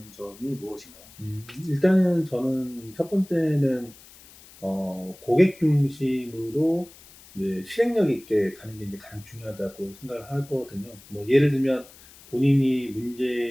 점이 무엇인가요? 일단은 저는 첫 번째는 고객 중심으로 이제 실행력 있게 가는 게 이제 가장 중요하다고 생각을 하거든요. 뭐 예를 들면 본인이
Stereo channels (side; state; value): left; noise; hiss, 22 dB below the sound